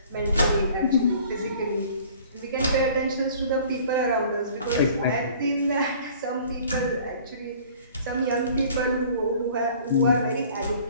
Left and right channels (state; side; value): inverted; both; correlation -0.50